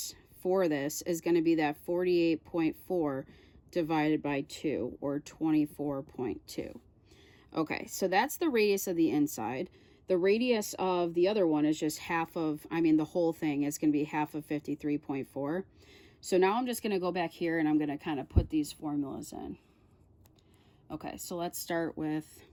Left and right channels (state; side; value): identical; both; correlation 1.00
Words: for this is going to be that 48.4 divided by 2, or 24.2. Okay, so that's the radius of the inside. The radius of the other one is just half of, the whole thing is going to be half of 53.4. So now I'm just going to go back here and I'm going to kind of put these formulas in. Okay, so let's start with,